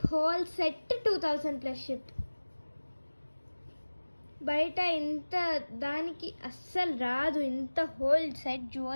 Whole set 2000 plus ship. బయట ఇంత దానికి అస్సలు రాదు. ఇంత whole set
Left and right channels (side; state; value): both; inverted; correlation -1.00